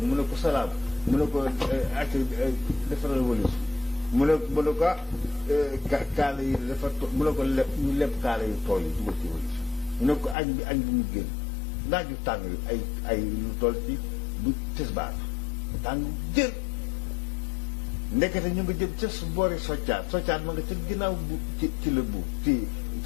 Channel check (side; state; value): right; drops out; at 10.4 s